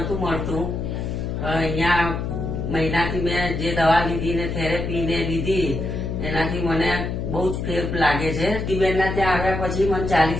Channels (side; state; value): left; noise; hum, 3 dB below the sound